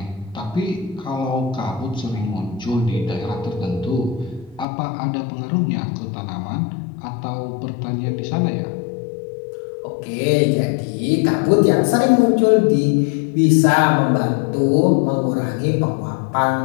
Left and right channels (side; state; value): right; drops out; at 4.7 s